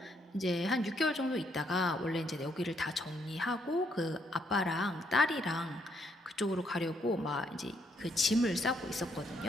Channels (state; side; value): normal; both; correlation 0.73